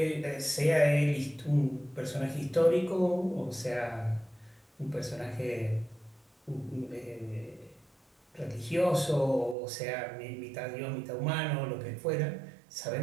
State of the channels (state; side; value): drops out; left; at 9.6 s